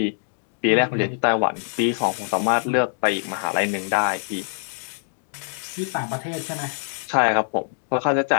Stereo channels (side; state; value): right; silent; digital silence